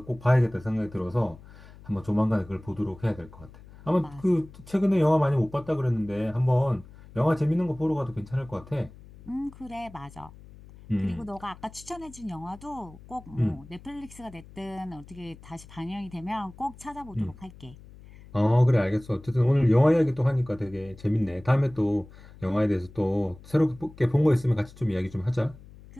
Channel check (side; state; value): left; noise; hum, 20 dB below the sound